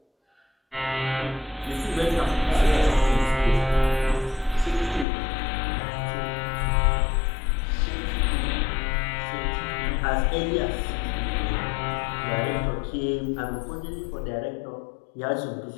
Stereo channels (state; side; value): drops out; right; at 5.1 s